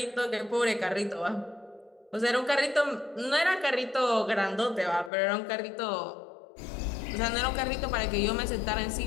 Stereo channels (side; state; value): right; drops out; at 5.1 s